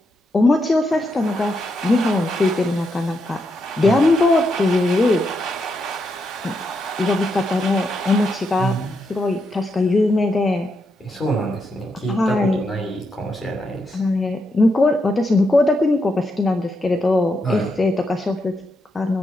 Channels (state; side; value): normal; both; correlation 0.82